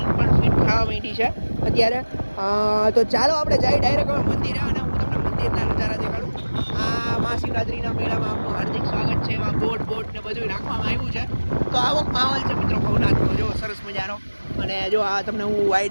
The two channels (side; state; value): both; inverted; correlation -1.00